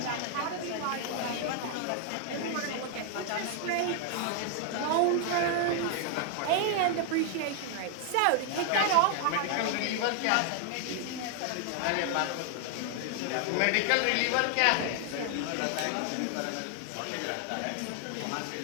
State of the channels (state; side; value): different; both; correlation 0.00